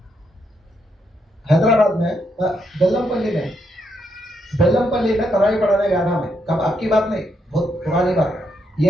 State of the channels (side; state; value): both; normal; correlation 0.78